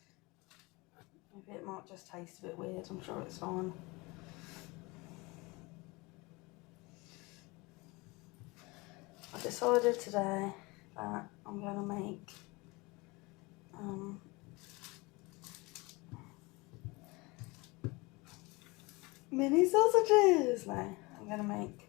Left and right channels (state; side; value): quieter; right; 24.8 dB